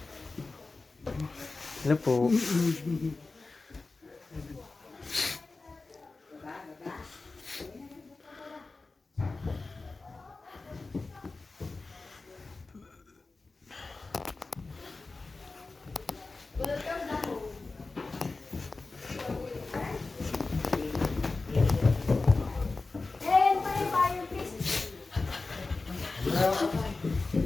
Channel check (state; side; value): quieter; right; 3.6 dB